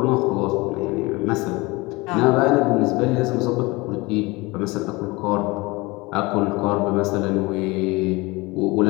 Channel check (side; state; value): right; quieter; 23.6 dB